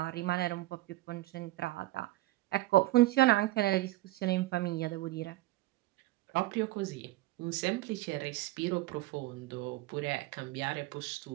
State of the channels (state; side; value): quieter; left; 17.5 dB